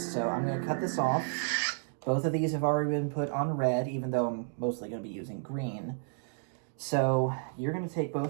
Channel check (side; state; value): left; silent; digital silence